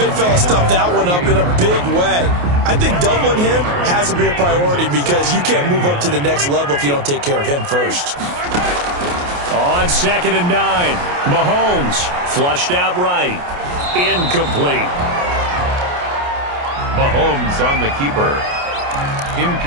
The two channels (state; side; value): late; left; 28 ms